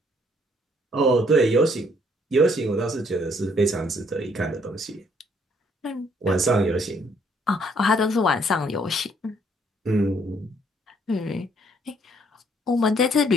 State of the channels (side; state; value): both; normal; correlation 0.65